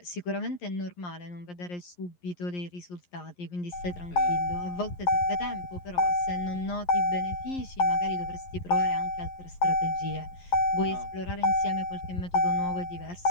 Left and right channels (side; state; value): right; late; 11 ms